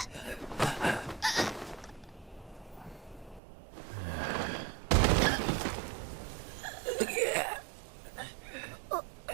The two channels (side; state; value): left; drops out; at 3.4 s